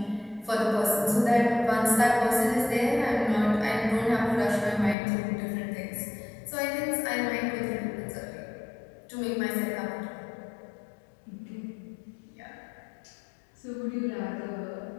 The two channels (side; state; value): right; drops out; at 5.0 s